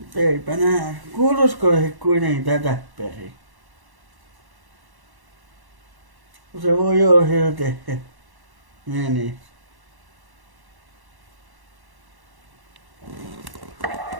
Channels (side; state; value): left; late; 1.1 ms